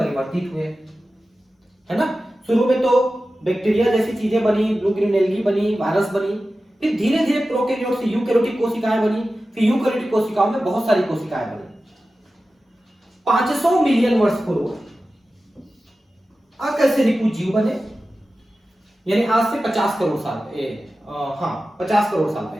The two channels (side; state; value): both; normal; correlation 0.94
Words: हुए, है ना। शुरू में तो बैक्टीरिया जैसी चीजें बनी, ब्लू ग्रीन एल्गी बनी, वायरस बनी, फिर धीरे धीरे प्रोकैरियोट से यूकैरियोटिक कोशिकाएं बनी, फिर यूकैरियोटिक कोशिकाओं में बहुत सारी कोशिकाएं बनी। 500 मिलियन वर्ष पूर्व अकशेरुकी जीव बने, यानी आज से 50 करोड़ साल 50 करोड़ साल